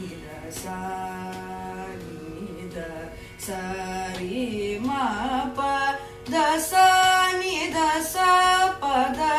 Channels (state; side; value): identical; both; correlation 1.00